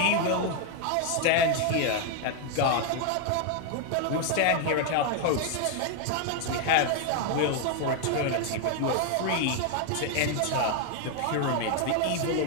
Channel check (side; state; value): both; different; correlation 0.01